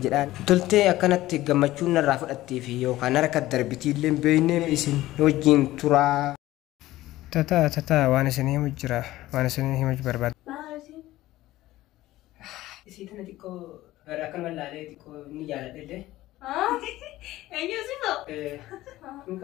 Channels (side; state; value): right; quieter; 16.2 dB